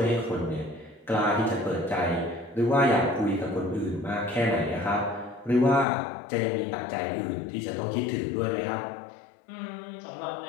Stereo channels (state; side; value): drops out; right; at 5.9 s